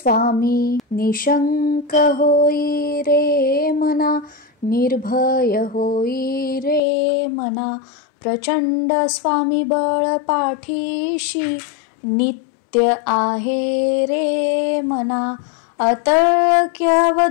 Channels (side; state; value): right; drops out; at 6.8 s